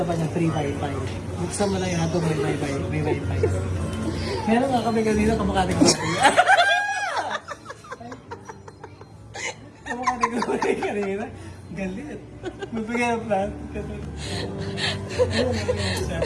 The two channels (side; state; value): both; identical; correlation 1.00